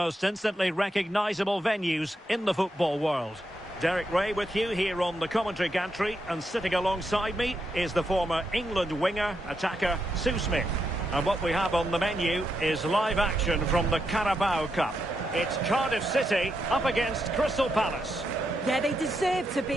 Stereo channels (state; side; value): normal; both; correlation 0.82